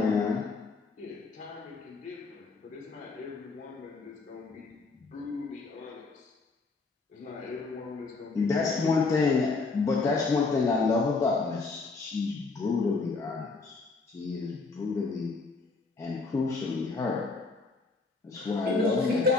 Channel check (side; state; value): right; quieter; 4.0 dB